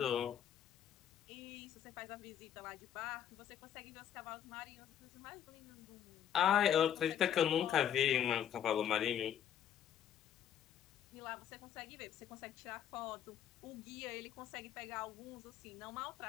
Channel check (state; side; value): quieter; right; 9.9 dB